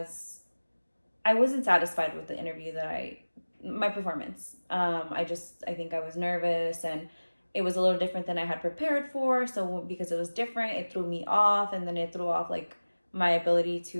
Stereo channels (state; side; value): inverted; both; correlation -1.00